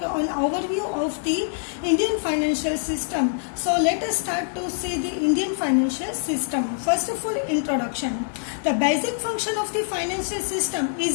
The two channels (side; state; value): right; silent; 62 dB below the other